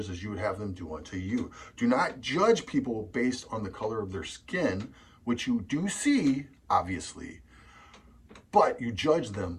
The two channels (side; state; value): both; identical; correlation 1.00